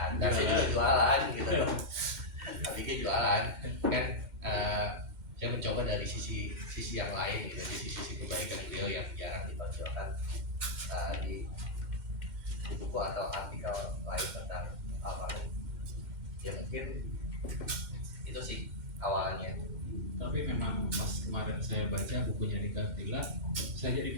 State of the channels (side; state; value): left; late; 2.1 ms